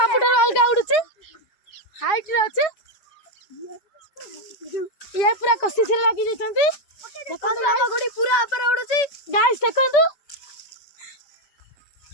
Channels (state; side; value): late; right; 5.3 ms